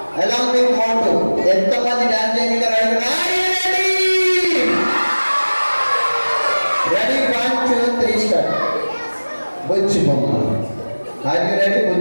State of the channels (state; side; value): inverted; both; correlation -1.00